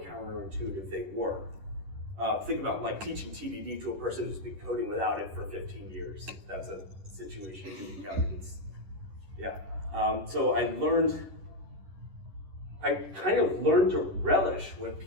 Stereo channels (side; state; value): left; late; 10 ms